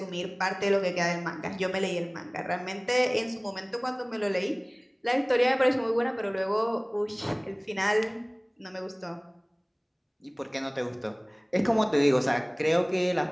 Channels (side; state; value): both; identical; correlation 1.00